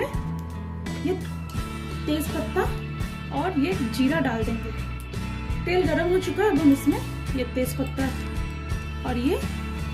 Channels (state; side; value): identical; both; correlation 1.00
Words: ये तेज पत्ता और ये जीरा डाल देंगे। तेल गर्म हो चुका है। अब हम इसमें ये तेज पत्ता और ये